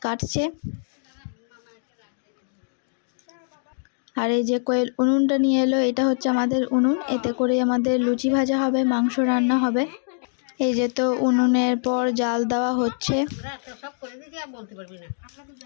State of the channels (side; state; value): right; silent; digital silence